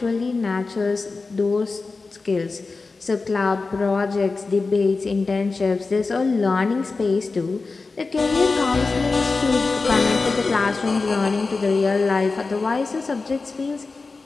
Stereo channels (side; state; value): right; quieter; 4.0 dB